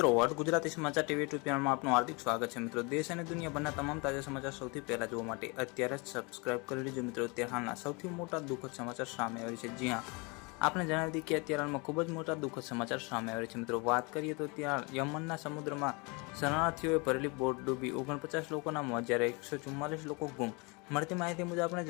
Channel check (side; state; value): right; quieter; 29.2 dB